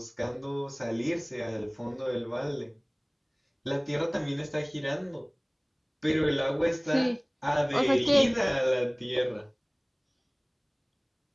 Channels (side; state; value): both; identical; correlation 1.00